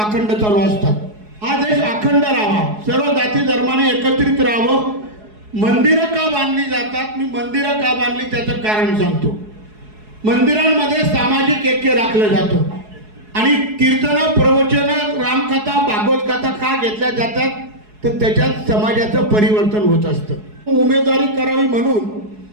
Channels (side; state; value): left; late; 4.7 ms